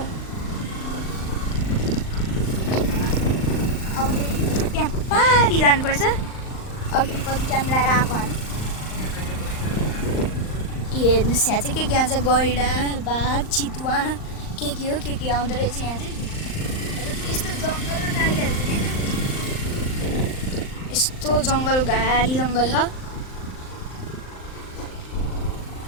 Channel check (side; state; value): right; late; 39 ms